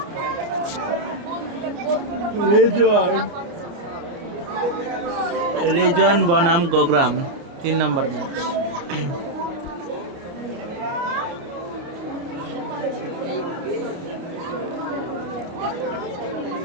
রেজন বনাম গোগ্রাম 3 নম্বর ম্যাচ।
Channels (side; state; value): left; late; 29 ms